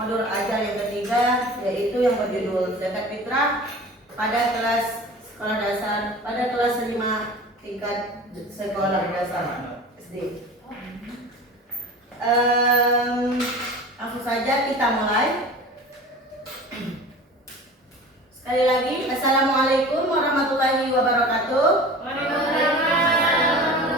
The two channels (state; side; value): normal; both; correlation 0.38